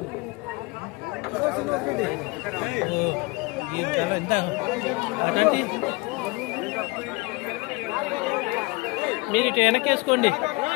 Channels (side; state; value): right; quieter; 26.0 dB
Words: మీరు ఇటు వెనకేసుకోండి.